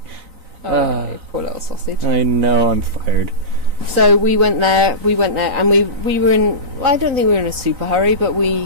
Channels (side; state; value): left; late; 3.9 ms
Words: Poor little sausage. I know, I'm fired. So we went there, and we were in... Well, I don't think we were in a super hurry, but